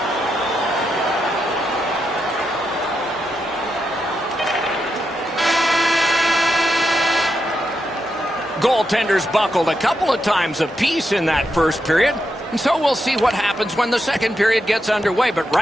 Goaltenders buckled a couple of times apiece in that first period. And so we'll see what happens when the second period gets underway. But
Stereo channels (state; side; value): normal; both; correlation 0.84